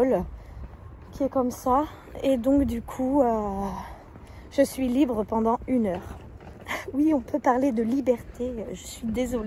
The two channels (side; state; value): both; identical; correlation 1.00